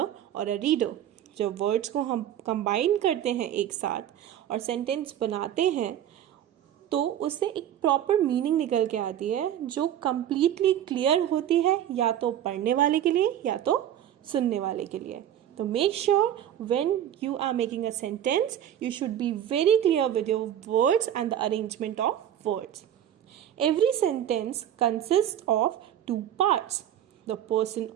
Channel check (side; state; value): left; quieter; 10.7 dB